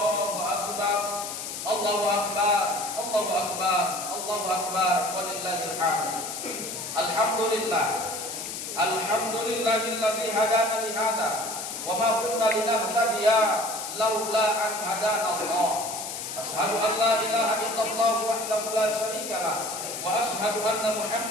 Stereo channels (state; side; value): noise; left; hiss, 7 dB below the sound